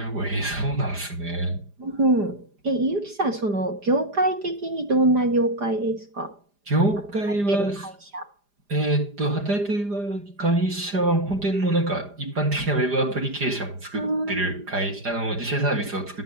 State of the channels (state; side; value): late; left; 4.9 ms